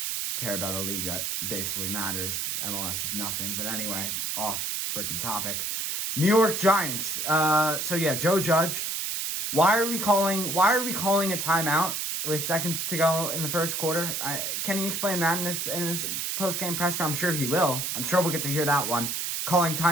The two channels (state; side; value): noise; right; hiss, 2 dB below the sound